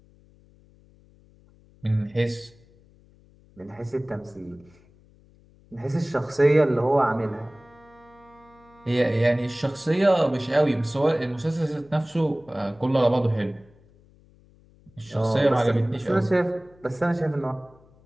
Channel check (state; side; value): noise; left; hum, 28 dB below the sound